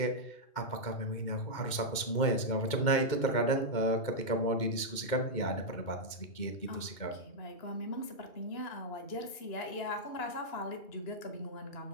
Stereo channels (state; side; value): late; right; 2.2 ms